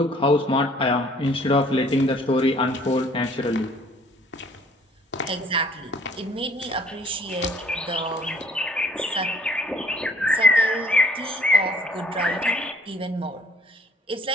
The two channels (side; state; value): both; normal; correlation 0.58